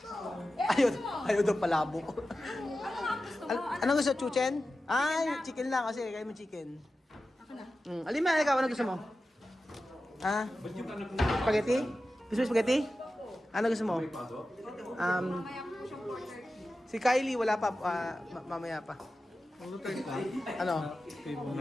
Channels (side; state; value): both; normal; correlation 0.93